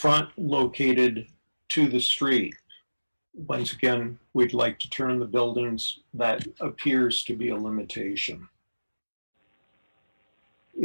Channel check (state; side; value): inverted; both; correlation -1.00